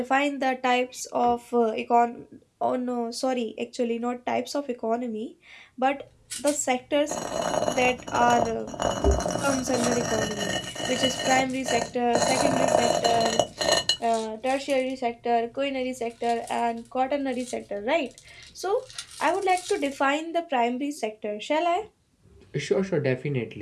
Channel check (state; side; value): identical; both; correlation 1.00